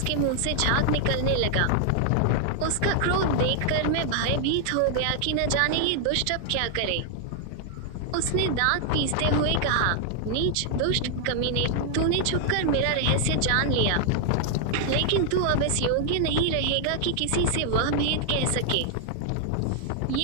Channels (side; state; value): both; different; correlation 0.00